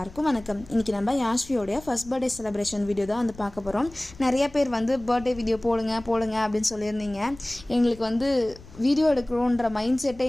வணக்கம். இன்றைக்கி நம்ம யாஷ்வியோடைய ஃபர்ஸ்ட் பர்த்டே செலிப்ரேஷன் வீடியோ தான் வந்து பார்க்க போகிறோம். நிறைய பேர் வந்து பர்த்டே வீடியோ போடுங்க அப்படின்னு சொல்லியிருந்தீங்க. எங்களுக்கு வந்து வீடியோ எடுக்கணுன்ற மைண்ட் செட்டே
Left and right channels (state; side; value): noise; left; rumble, 20 dB below the sound